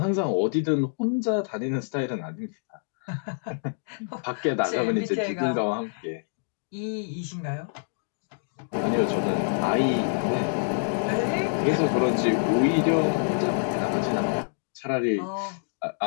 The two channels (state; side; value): silent; right; digital silence